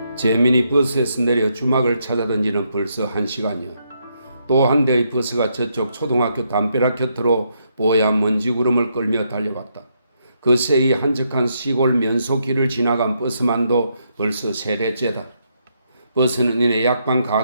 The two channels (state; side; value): inverted; both; correlation -0.77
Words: 재민이 버스에서 내려 주막을 찾아던 지는 벌써 1시간이요. 또 한 대의 버스가 저쪽 초등학교 담벼락 곁으로 뽀얀 먼지구름을 끌며 달려왔다. 그 새이 한적한 시골 면소길을 지나간 버스만도 벌써 3대째다. 버스는 이내 약방